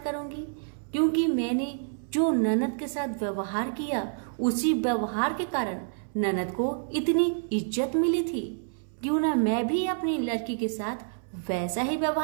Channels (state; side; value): silent; left; 59 dB below the other